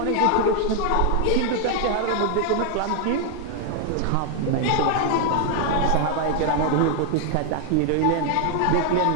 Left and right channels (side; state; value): both; different; correlation 0.00